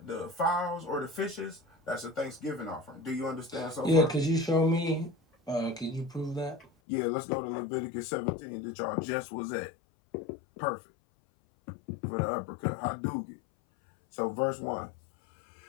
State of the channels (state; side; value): drops out; right; at 6.7 s